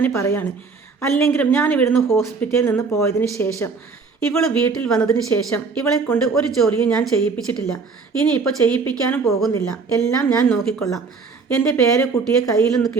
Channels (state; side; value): quieter; left; 4.7 dB